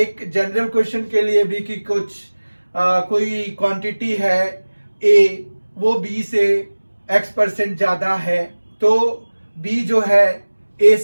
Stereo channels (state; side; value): inverted; both; correlation -1.00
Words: जनरल क्वेश्चन के लिए भी कि कोई क्वांटिटी है ए, वो बी से x% ज्यादा है, तो बी जो है ए